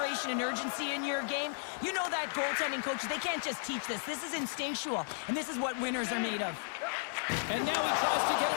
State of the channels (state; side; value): silent; right; digital silence